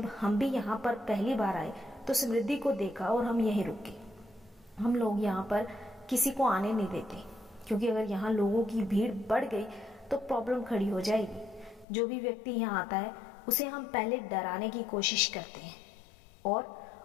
हम भी यहाँ पर पहली बार आए तो समृद्धि को देखा और हम यहीं रुके। हम लोग यहाँ पर किसी को आने नहीं देते, क्योंकि अगर यहाँ लोगों की भीड़ बढ़ गई तो प्रॉब्लम खड़ी हो जाएगी। जो भी व्यक्ति यहाँ आता है उसे हम पहले डराने की कोशिश करते हैं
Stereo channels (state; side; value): drops out; right; at 11.9 s